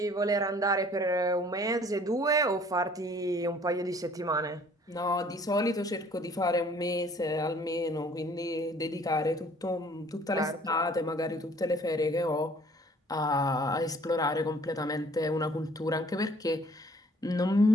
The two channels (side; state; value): both; normal; correlation 0.55